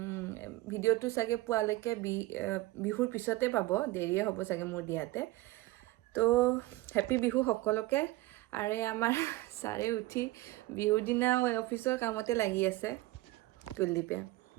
ভিডিঅ'টো চাগে পোৱালৈকে বিহুৰ পিছতে পাব, দেৰিয়ে হ'ব চাগে মোৰ দিয়াতে। তো হেপী বিহু সকলোকে। আৰু আমাৰ ছাৰে উঠি বিহুৰ দিনা অফিচৰ কামতে লাগি আছে। কুলদীপে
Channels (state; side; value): quieter; left; 18.6 dB